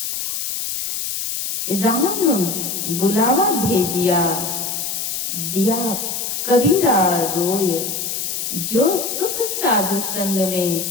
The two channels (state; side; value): noise; left; hiss, 3 dB below the sound